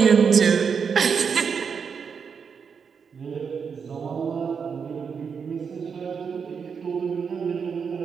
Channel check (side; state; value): left; quieter; 6.3 dB